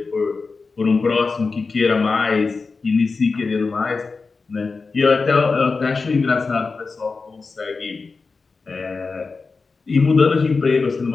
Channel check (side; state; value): right; quieter; 4.3 dB